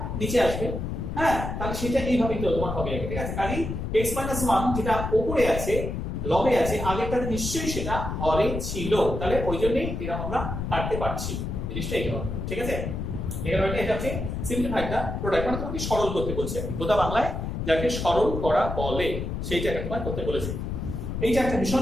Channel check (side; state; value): left; noise; rumble, 4 dB below the sound